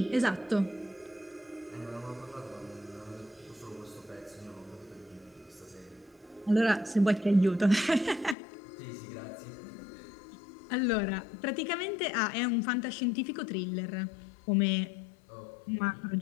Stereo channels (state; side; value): drops out; right; at 8.3 s